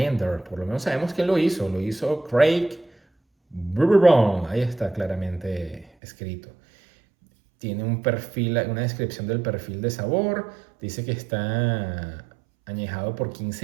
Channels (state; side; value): drops out; left; at 5.9 s